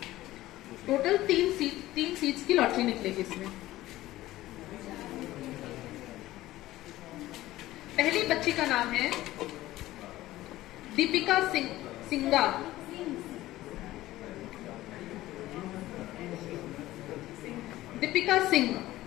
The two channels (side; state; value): right; quieter; 16.2 dB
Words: टोटल 3 सीट्स की लॉटरी निकलेगी इसमें। पहली बच्ची का नाम है दीपिका सिंगा। दीपिका सिंह।